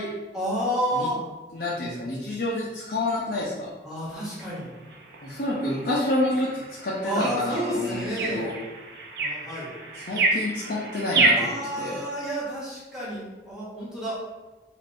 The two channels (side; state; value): both; normal; correlation 0.28